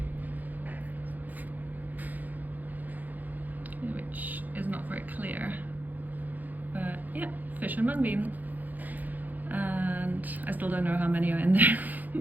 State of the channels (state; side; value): late; left; 0.083 ms